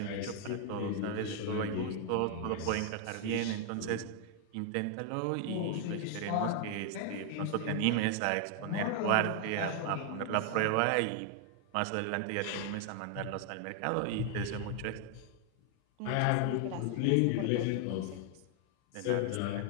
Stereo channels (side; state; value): both; different; correlation 0.00